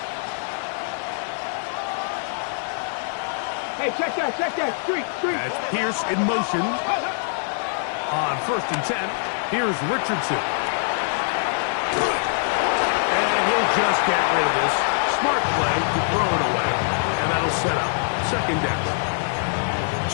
Hey, check that. Street. That's Pierce in motion. On first and 10, here's Richardson. And he'll just get rid of this. Smart play to throw it away. And that'll set up second down.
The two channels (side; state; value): right; silent; 58 dB below the other